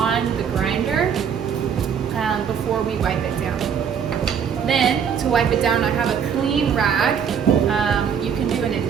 the grinder before we wipe it down. Then, to wipe it down, I have a clean rag. You can do an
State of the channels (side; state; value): left; quieter; 7.5 dB